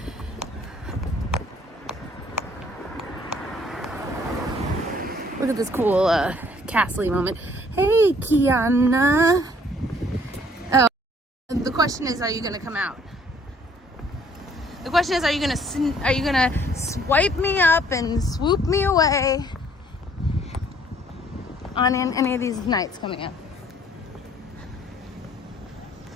Look at this cool Castle moment. Hey, Kiana. Oh, the question is, are you gonna come out? The question is, are you gonna swipe me up and swoop me away on any of these nights coming up?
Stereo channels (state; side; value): normal; both; correlation 0.61